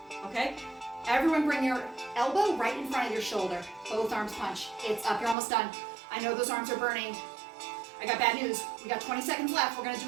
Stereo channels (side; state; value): left; drops out; at 5.4 s